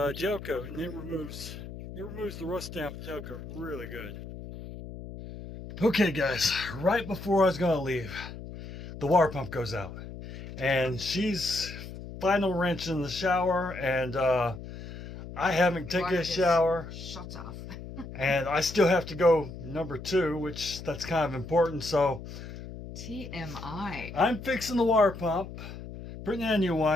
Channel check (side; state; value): left; noise; hum, 11 dB below the sound